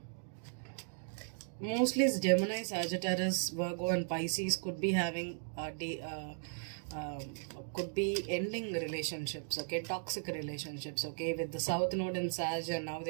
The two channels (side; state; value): left; silent; digital silence